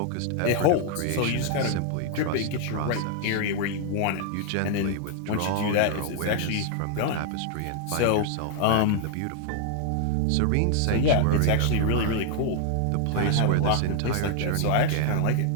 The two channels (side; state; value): both; different; correlation 0.00